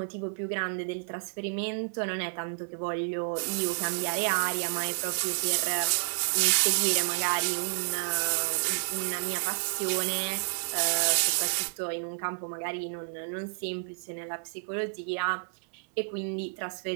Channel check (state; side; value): silent; left; digital silence